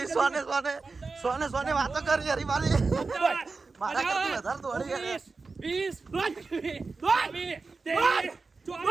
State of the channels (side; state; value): left; quieter; 4.1 dB